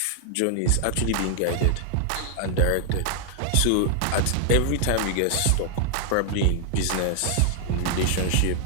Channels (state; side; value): different; both; correlation 0.00